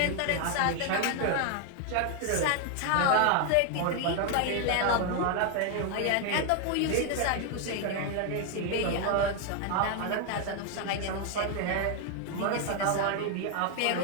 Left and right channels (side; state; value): both; different; correlation 0.01